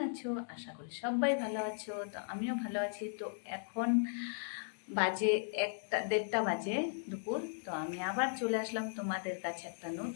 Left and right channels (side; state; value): right; silent; digital silence